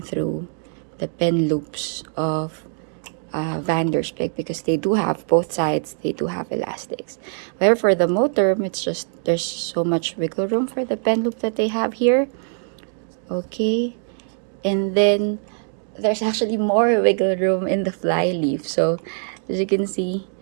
through the pen loops of Spek, because they do have both sides, they do have elastics. However, for the Moterm, it's just there's so much wiggle room for the pen loop that they have here. Okay, and then there's actually more wiggle room in the flyleaf. So as you can see,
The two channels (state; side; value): silent; left; 60 dB below the other